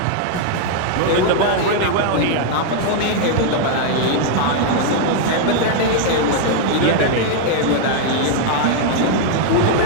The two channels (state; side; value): different; both; correlation 0.00